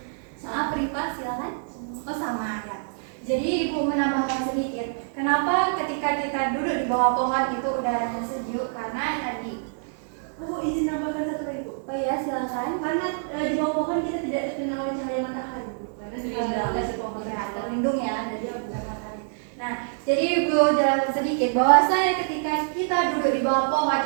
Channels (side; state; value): left; silent; digital silence